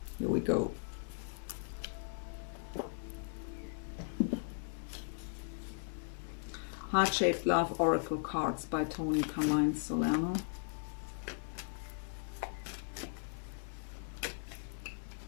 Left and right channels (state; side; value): silent; right; digital silence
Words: Here we go. Heart-Shaped Love Oracle Cards by Tony Carmine Solano.